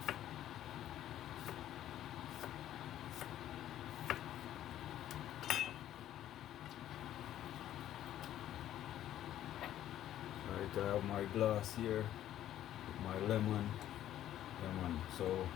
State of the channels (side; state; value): right; quieter; 12.1 dB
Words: Right, I have my glass here with my lemon. So